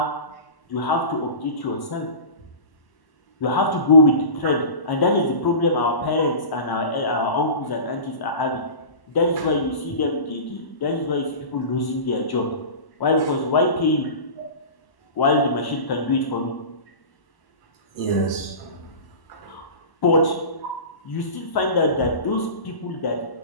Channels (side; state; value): right; late; 1.0 ms